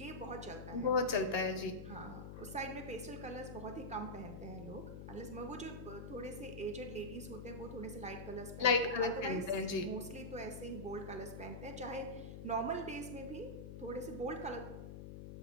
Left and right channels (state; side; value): noise; left; hum, 9 dB below the sound